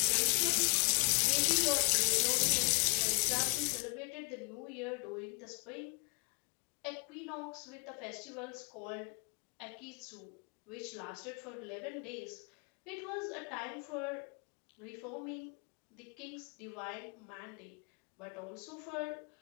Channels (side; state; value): right; quieter; 38.1 dB